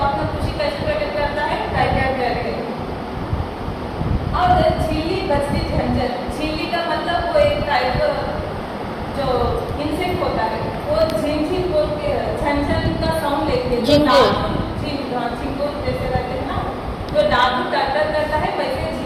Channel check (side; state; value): both; identical; correlation 1.00